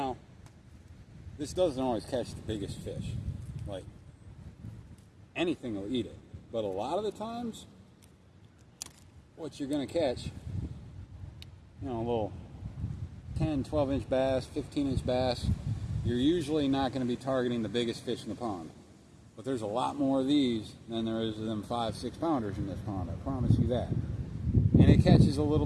this doesn't always catch the biggest fish. Like, anything will eat it. But a lot of the times, what you're going to catch, you know, a little 10, 12-inch bass, 15-inch bass, you're usually not going to be targeting the biggest fish in the pond. But there's a lot more of these than there is of them 5-6 pounders in this pond, I promise you that. And it catches a little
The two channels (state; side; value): identical; both; correlation 1.00